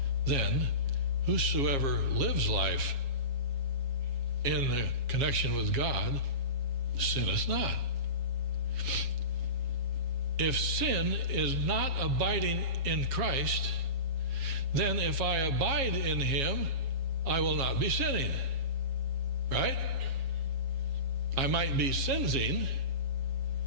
then whosoever lives life in the connection with God sinneth not. If sin is not abiding in Christ, then if I abide in him, I will not be sinning. Right? I might be sinning.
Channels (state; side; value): late; left; 7.3 ms